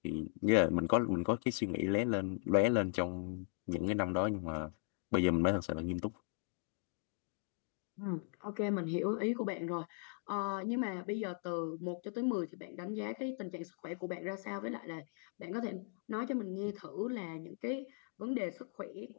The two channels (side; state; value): right; silent; 52 dB below the other